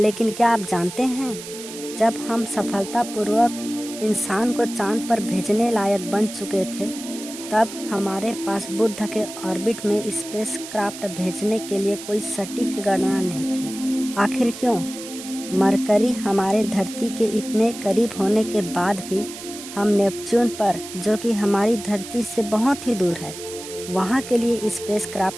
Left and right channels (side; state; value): right; noise; hiss, 12 dB below the sound